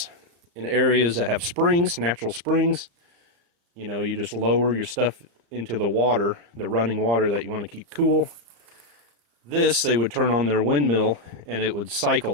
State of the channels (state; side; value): late; left; 34 ms